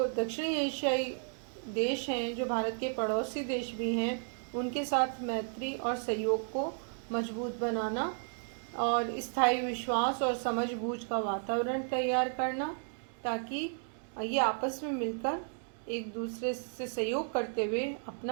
दक्षिणी एशियाई देश हैं, जो भारत के पड़ोसी देश भी हैं, उनके साथ मैत्री और सहयोग को मजबूत बनाना और स्थायी विश्वास और समझबूझ का वातावरण तैयार करना ताकि ये आपस में मिलकर एक दूसरे से सहयोग करते हुए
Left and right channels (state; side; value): silent; left; 55 dB below the other